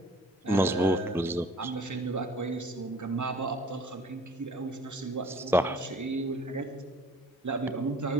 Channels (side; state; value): both; normal; correlation 0.52